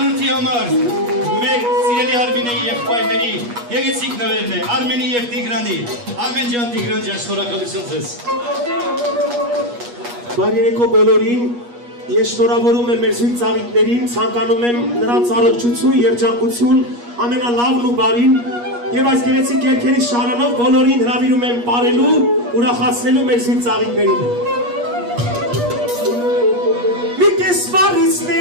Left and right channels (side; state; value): left; late; 8.4 ms